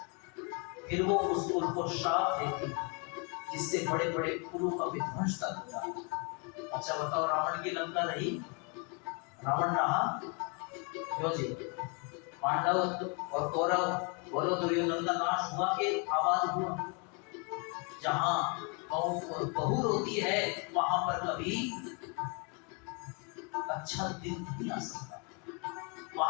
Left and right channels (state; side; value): quieter; right; 34.5 dB